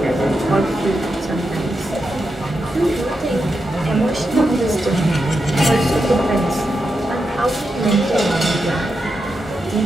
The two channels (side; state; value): both; normal; correlation 0.87